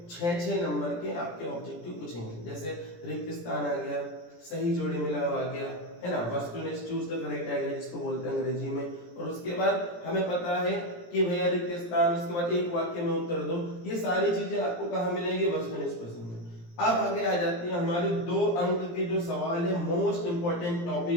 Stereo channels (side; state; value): right; late; 17 ms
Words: 6 नंबर के आपके ऑब्जेक्टिव पूछेंगे। जैसे रिक्त स्थान आ गया, सही जोड़ी मिला हुआ आ गया, है ना, वस्तुनिष्ठ चूज द करेक्ट आइडिया जिसको बोलते हैं अंग्रेजी में। और उसके बाद हमें पता है कि भैया रिक्त स्थान, उसके बाद एक वाक्य में उत्तर दो। ये सारी चीजें आपको कहाँ मिलेंगी? वस्तुनिष्ठ प्रश्न में। अब आगे आ जाती है हमारी 2 अंक के जो सवाल है, मोस्ट इंपॉर्टेंट